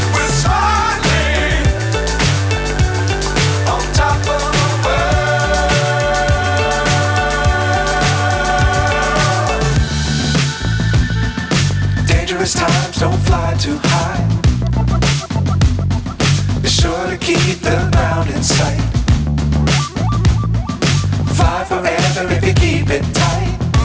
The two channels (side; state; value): both; identical; correlation 1.00